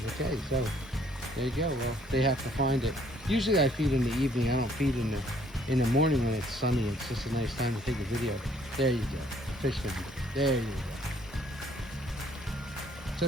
Okay, so there you go. Well, they have to find it. Usually I feed in the evening. I don't feed in the morning when it's sunny. It's just a nice time to take a video. There you go. Fish food. There you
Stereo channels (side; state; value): both; normal; correlation 0.63